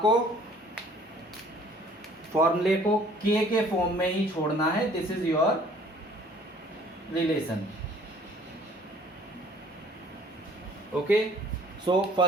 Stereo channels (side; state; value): both; normal; correlation 0.55